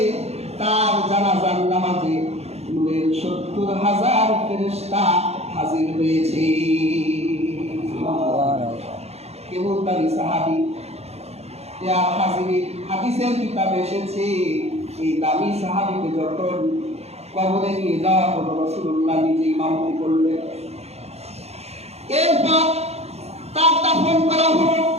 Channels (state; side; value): late; left; 0.31 ms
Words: তার জানাজার নামাজে নূরের 70,000 ফেরেশতা হাজির হয়েছে। কেবল তারই সাহাবী। হাদিসের কিতাবে এসেছে এই দামি সাহাবীকে যখন কবরে নিয়ে যাওয়া হলো, রাসূলুল্লাহ নিজে ইমামতি করলেন। এরপর তার দাফন করা হলো।